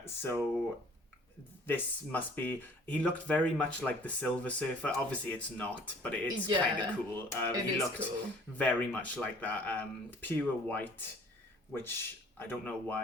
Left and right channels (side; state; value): both; normal; correlation 0.53